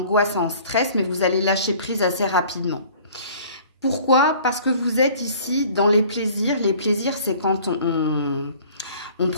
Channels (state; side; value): inverted; both; correlation -0.50